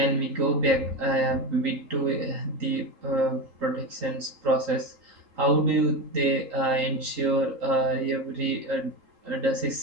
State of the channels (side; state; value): left; late; 3.8 ms